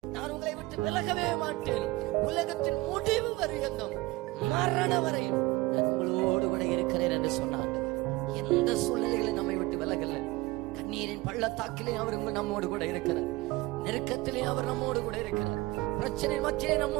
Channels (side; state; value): left; quieter; 20.8 dB